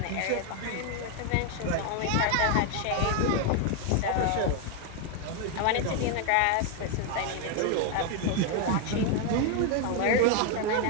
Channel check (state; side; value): different; both; correlation 0.01